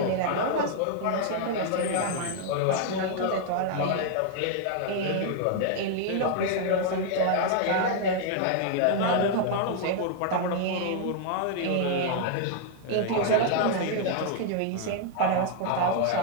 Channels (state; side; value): different; both; correlation 0.00